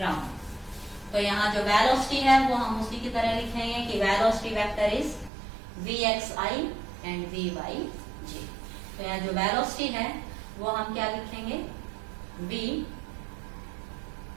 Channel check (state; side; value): drops out; left; at 5.3 s